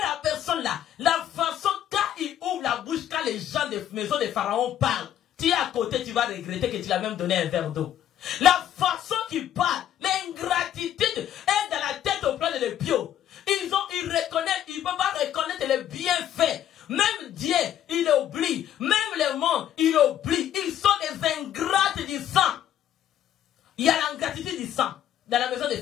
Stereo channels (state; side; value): quieter; right; 11.0 dB